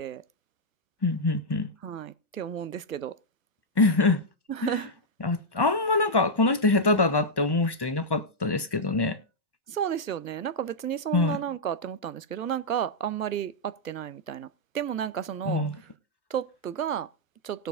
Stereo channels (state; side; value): late; right; 1.2 ms